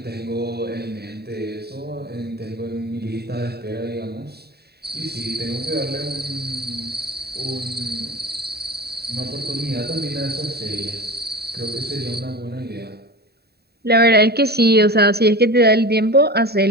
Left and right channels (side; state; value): left; late; 0.47 ms